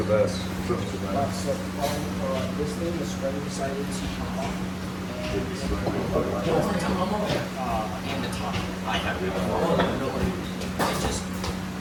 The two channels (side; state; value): both; identical; correlation 1.00